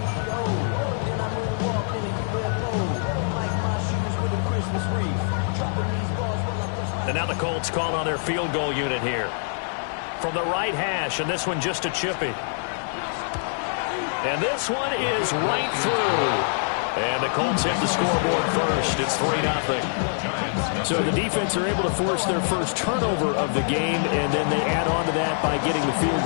And now the Colts call on their field goal unit here. From the right hash, and this one just a chippy. And this one is right through. And the Colts hit the scoreboard first. It's 3-0. So the defense are able to force their first turnover of the game, and then they add on to that by getting the field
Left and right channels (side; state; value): right; silent; 59 dB below the other